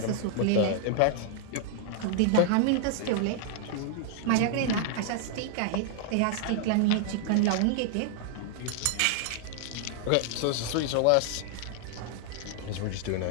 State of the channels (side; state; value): both; different; correlation -0.01